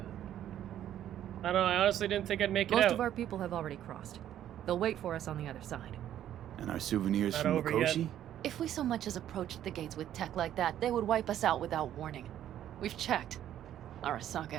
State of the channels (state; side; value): quieter; left; 11.3 dB